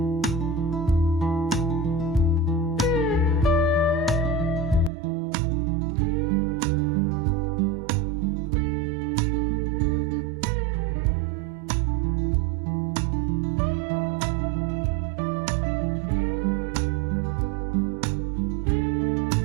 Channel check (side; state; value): left; drops out; at 4.9 s